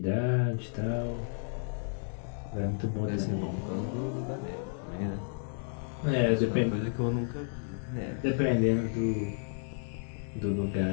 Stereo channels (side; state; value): right; silent; 55 dB below the other